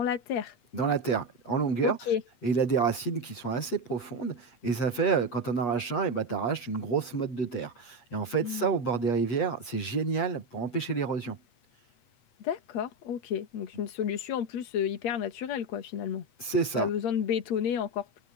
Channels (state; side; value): late; right; 8.3 ms